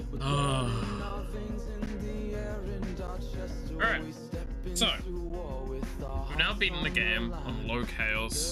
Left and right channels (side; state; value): both; identical; correlation 1.00